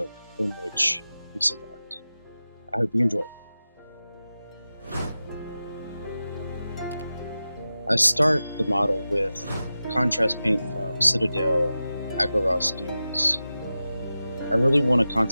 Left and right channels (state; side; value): inverted; both; correlation -0.93